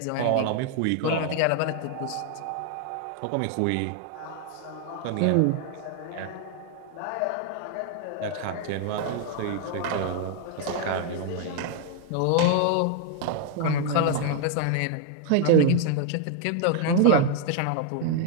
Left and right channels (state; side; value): different; both; correlation 0.00